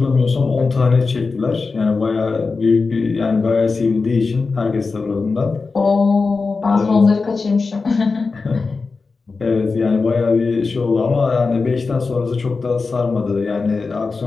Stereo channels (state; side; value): quieter; right; 4.3 dB